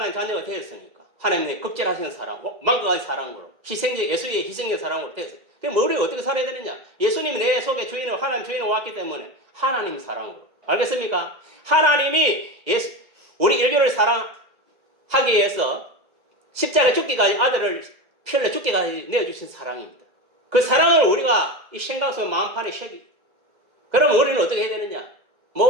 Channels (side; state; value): left; late; 2.0 ms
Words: 자녀가 되었으니까 하나님의 급제하시는 사랑, 망각하신 사랑으로 예수의 희생의 사랑으로 되었어요. 그럼 우리가 어떻게 살아야 되느냐? 예수님이 내 속에 주인으로 하나님 주인으로 왔기 때문에 하나님 사랑으로. 알겠습니까? 하나님이 우리 인류를 사랑하기 위해서 십자가에 죽기까지 아들을 피 흘려 죽기까지 내어주신 사랑입니다. 그 사랑을 우리가 이 생각 속 마음판에 새기. 그러면 우리는 어떻게 해야 되느냐?